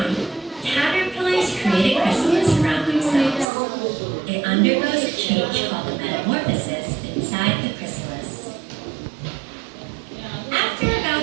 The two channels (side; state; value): left; drops out; at 3.5 s